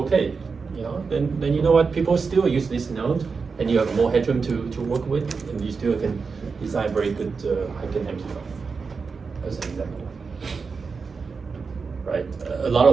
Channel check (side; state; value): left; quieter; 5.0 dB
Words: Then you know what? People still use this node, and you have more headroom to work with, and you still can design very good high gain amplifier. As an example, right? A lot